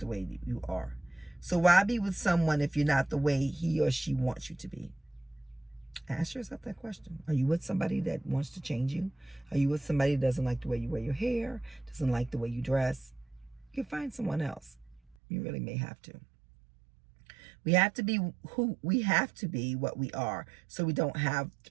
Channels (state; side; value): drops out; left; at 15.2 s